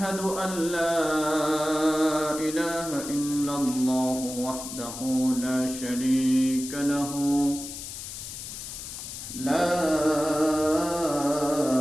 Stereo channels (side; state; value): left; noise; hiss, 9 dB below the sound